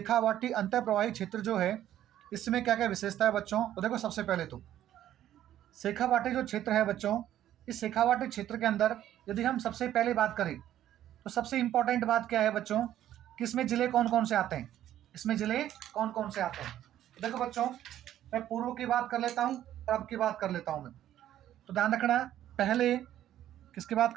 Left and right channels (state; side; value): quieter; left; 12.0 dB